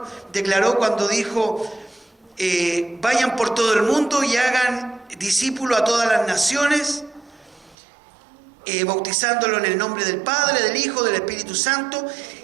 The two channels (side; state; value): left; drops out; at 7.8 s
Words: declaró cuando dijo: vayan por todo el mundo y hagan discípulos a todas las naciones, bautizándolo en el nombre del Padre, del Hijo, del Espíritu Santo,